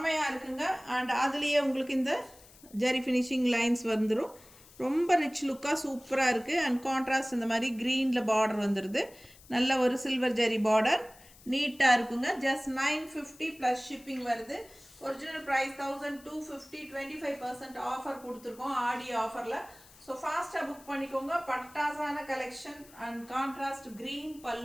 இருக்குங்க. அண்ட் அதுலேயே உங்களுக்கு இந்த ஜரி ஃபினிஷிங் லைன்ஸ் வந்துடும். ரொம்ப ரிச் லுக்காக சூப்பராக இருக்குது. அண்ட் கான்ட்ராஸ்ட் இந்த மாதிரி க்ரீனில் பார்டர் வந்துடுது. நல்ல ஒரு சில்வர் ஜரி பார்டர், நீட்டாக இருக்குங்க. ஜஸ்ட் 950 ப்ளஸ் ஷிப்பிங் வருது. ஒரிஜினல் ப்ரைஸ் 1250, 25% ஆஃபர் கொடுத்துருக்கோம் ஆடி ஆஃபரில். ஸோ ஃபாஸ்ட்டாக புக் பண்ணிக்கோங்க. பட்டாசான கலெக்ஷன் அண்ட் கான்ட்ராஸ்ட் க்ரீன்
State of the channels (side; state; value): left; noise; hiss, 23 dB below the sound